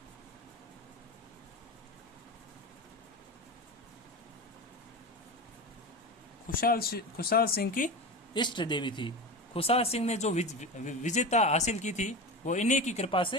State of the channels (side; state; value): both; normal; correlation 0.25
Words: खुशहाल सिंह की इष्ट देवी थी। खुशहाल सिंह ने जो विजेता हासिल की थी वो इन्हीं की कृपा